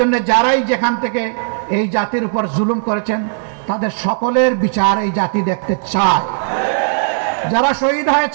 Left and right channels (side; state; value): left; silent; 69 dB below the other